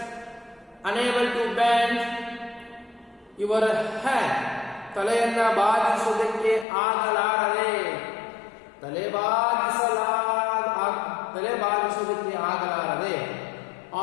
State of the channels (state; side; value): drops out; right; at 6.7 s